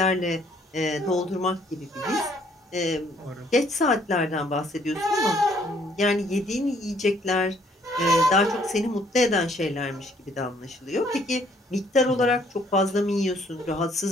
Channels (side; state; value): both; normal; correlation 0.64